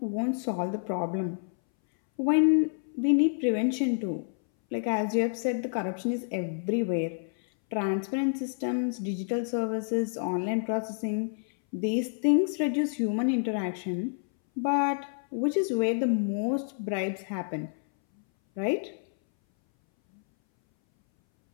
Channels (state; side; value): silent; right; 59 dB below the other